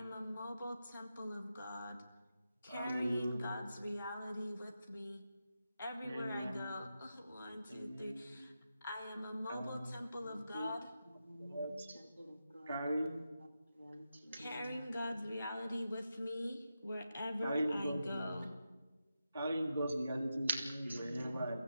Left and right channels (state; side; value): inverted; both; correlation -0.89